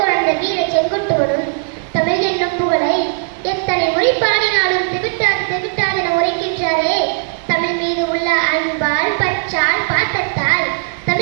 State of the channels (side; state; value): left; silent; 68 dB below the other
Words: வீர செங்குட்டுவனும் தமிழ் என்னும் புகழை எத்தனை முறை பாடினாலும் திவிட்டாதென உரைக்கின்றாரே. தமிழ் மீது உள்ள அன்பால் பற்றால் பாத்தத்தால்